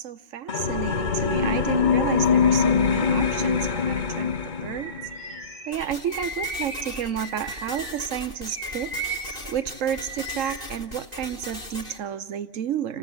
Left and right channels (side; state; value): left; late; 2.6 ms